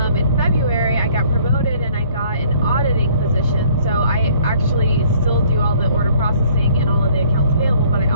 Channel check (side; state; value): both; inverted; correlation -0.58